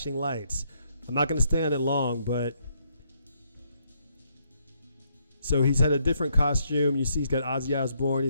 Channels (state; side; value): inverted; both; correlation -0.73